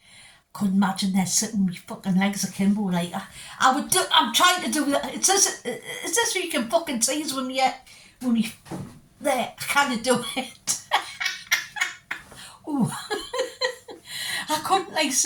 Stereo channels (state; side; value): identical; both; correlation 1.00